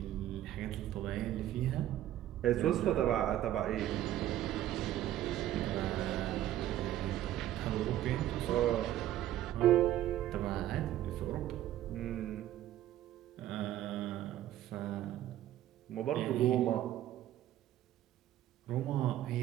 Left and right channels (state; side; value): quieter; left; 12.9 dB